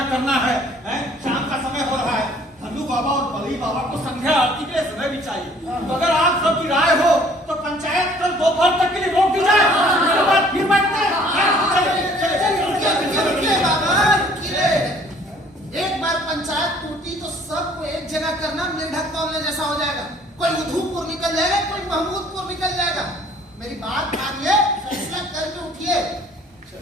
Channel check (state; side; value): normal; both; correlation 0.56